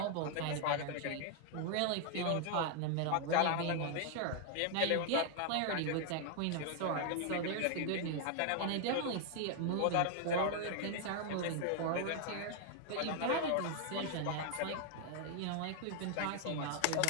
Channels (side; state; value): both; different; correlation 0.00